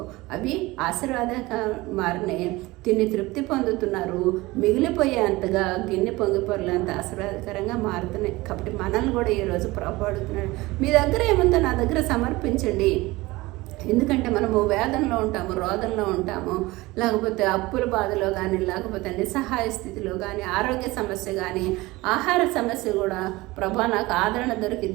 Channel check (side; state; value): left; quieter; 20.7 dB